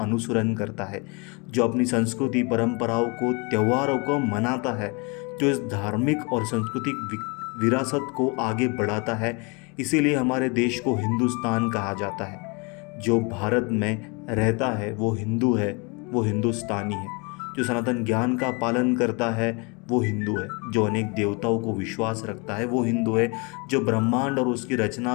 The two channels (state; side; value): quieter; right; 30.8 dB